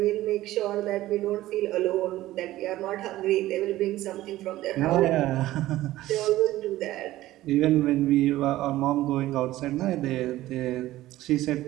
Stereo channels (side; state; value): left; quieter; 15.7 dB